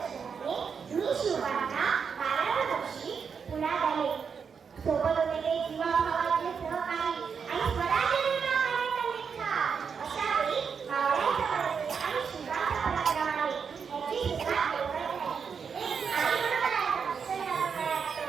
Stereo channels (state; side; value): quieter; left; 6.3 dB